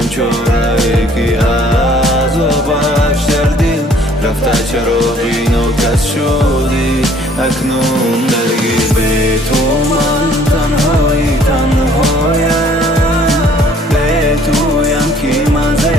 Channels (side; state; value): both; normal; correlation 0.58